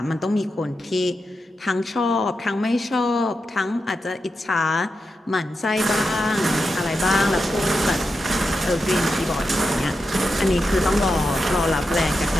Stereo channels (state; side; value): normal; both; correlation 0.88